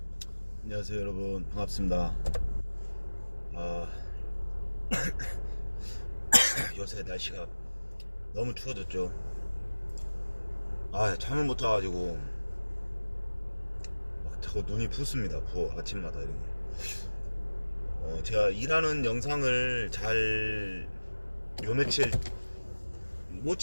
안녕하세요 여러분, 반갑습니다. 요새 날씨가 너무 추워졌죠. 잠을 못 자가지고 막 자꾸 눈이 붓습니다. 부어, 아침마다 이렇게. 제가 일하는 영상을 잘 요 며칠 못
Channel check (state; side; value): inverted; both; correlation -1.00